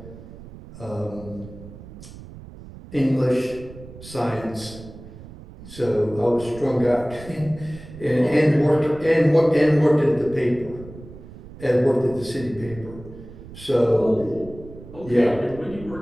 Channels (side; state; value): right; noise; rumble, 16 dB below the sound